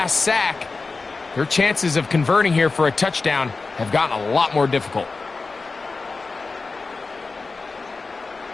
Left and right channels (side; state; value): right; quieter; 4.0 dB